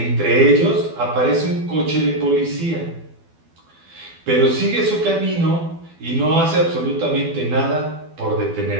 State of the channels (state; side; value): late; left; 12 ms